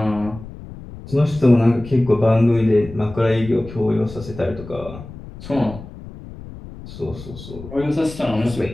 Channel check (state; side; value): noise; left; rumble, 15 dB below the sound